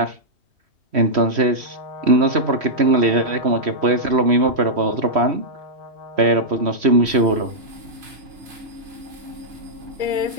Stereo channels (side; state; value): left; late; 3.1 ms